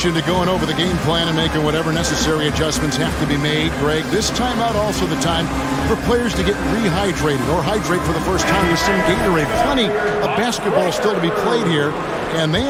to going over the game plan and making whatever necessary adjustments have to be made, Greg, this timeout also the time for players to get rehydrated or hydrate for the first time with some Gatorade. Plenty of basketball still to be played here, and they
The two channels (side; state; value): both; identical; correlation 1.00